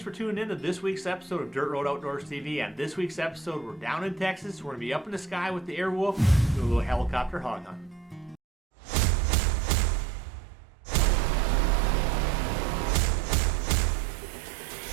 for tuning in to this week's episode of Dirt Road Outdoors TV. On this week's episode, we're down in Texas. We're going to be up in the sky with the Airwolf, doing a little helicopter hog hunt.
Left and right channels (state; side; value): drops out; left; at 8.4 s